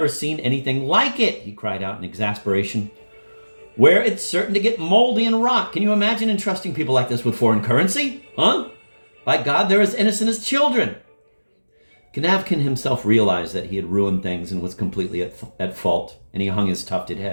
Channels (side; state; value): both; inverted; correlation -1.00